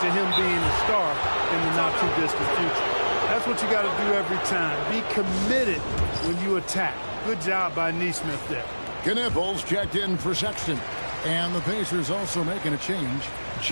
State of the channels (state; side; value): inverted; both; correlation -1.00